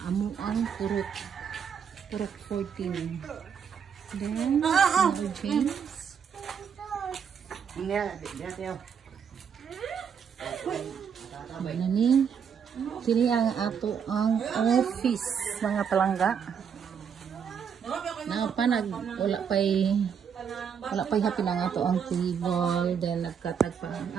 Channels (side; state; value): left; quieter; 7.2 dB